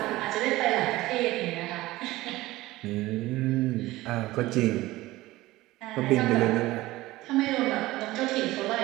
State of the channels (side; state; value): left; quieter; 18.0 dB